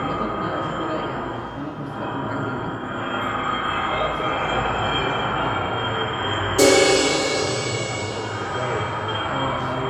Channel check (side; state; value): both; identical; correlation 1.00